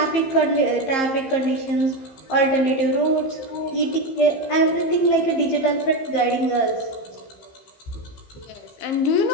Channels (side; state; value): right; late; 15 ms